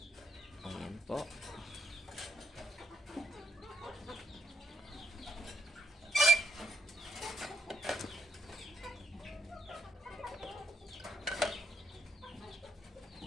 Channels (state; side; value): normal; both; correlation 0.76